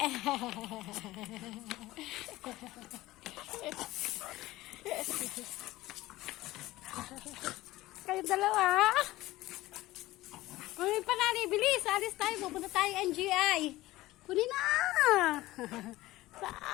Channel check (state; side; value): quieter; right; 17.6 dB